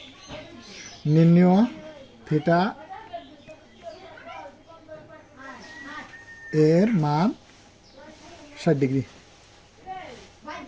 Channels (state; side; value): identical; both; correlation 1.00